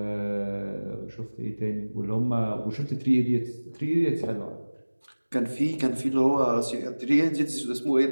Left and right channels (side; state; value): both; inverted; correlation -1.00